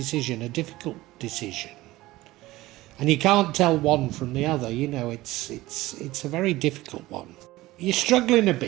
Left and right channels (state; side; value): quieter; left; 18.0 dB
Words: a difficult decision. And you can't tell one from the other, you know, it's a very difficult one. You're struggling a